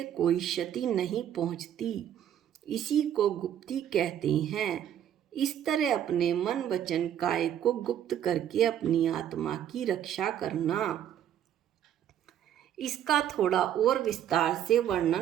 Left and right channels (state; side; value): quieter; left; 10.4 dB